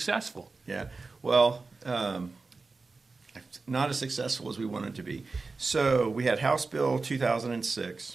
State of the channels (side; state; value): left; quieter; 4.0 dB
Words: Yeah, well, not as successful as we wanted to be. So we had House Bill